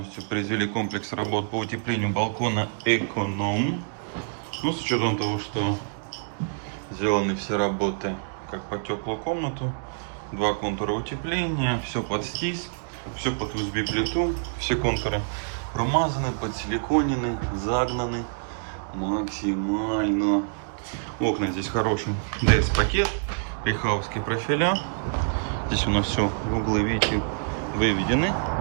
произвели комплекс работ по утеплению балкона «Эконом». Ну, с учетом того, что сделаны все работы как по теплую комнату, два контура утепления, все под стис, все под USB-плиту, все контуры промазаны, подсиликонены, загнаны максимально. Окна здесь хороший DS-пакет, рихаусские профиля. Здесь у нас все углы, видите,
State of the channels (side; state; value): left; silent; digital silence